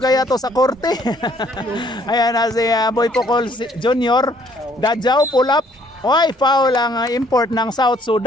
to sa korte. Ayan na si Boy Pocol Jr. Dadjaw, pull up. Oy, foul ang import ng South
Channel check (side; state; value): both; normal; correlation 0.63